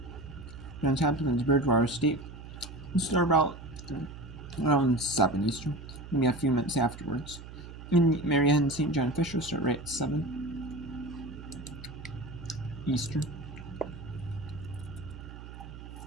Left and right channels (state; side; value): noise; right; hum, 13 dB below the sound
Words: Johns Hopkins, Bridgewater State, we'll start about around 7 Eastern, maybe a few minutes afterwards. In Marianne St. John Fisher start right at 7 Eastern.